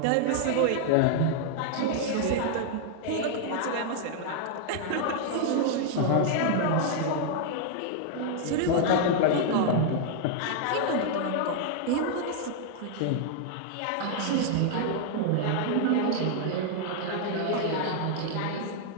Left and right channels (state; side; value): different; both; correlation 0.00